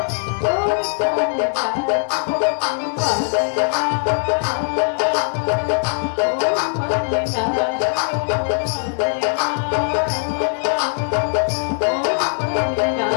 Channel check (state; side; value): silent; right; 64 dB below the other